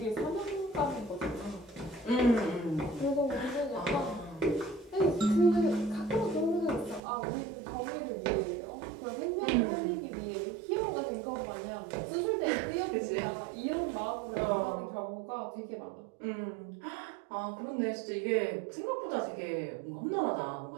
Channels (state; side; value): drops out; left; at 7.0 s